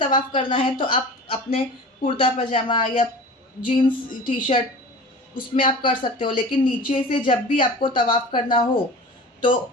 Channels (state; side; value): normal; both; correlation 0.38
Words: करना है तो आप अपने कुर्ता पजामा या जीन्स टी शर्ट उसमें आप कर सकते हो, लेकिन नीचे से जब भी आपको तवाफ़ करना हो तो